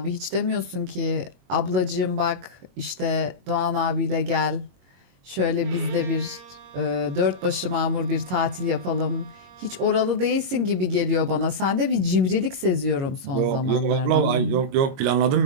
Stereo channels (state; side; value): late; left; 22 ms